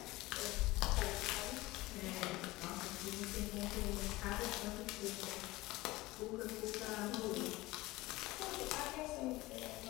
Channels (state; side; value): quieter; right; 19.8 dB